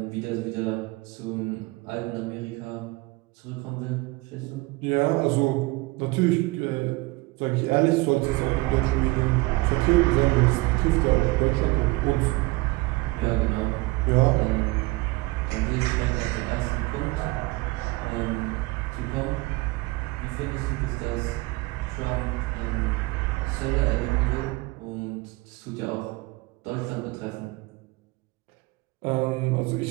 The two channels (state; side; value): quieter; left; 22.8 dB